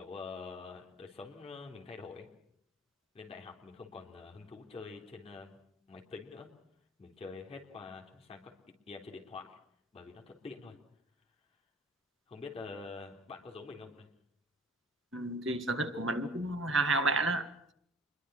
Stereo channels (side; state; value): both; normal; correlation 0.48